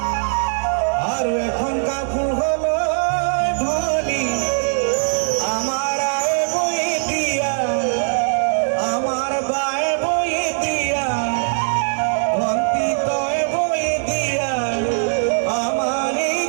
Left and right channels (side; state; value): left; silent; 66 dB below the other